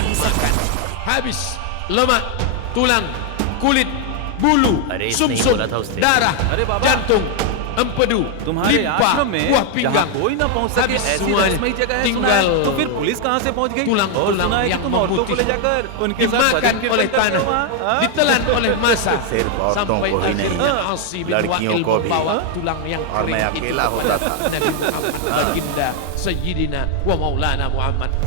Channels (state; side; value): different; both; correlation 0.01